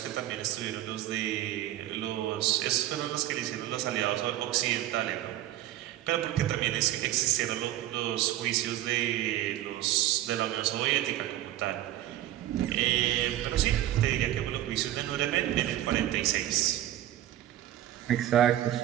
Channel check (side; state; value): left; quieter; 13.5 dB